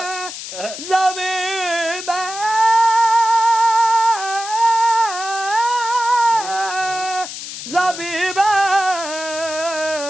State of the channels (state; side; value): noise; left; hiss, 9 dB below the sound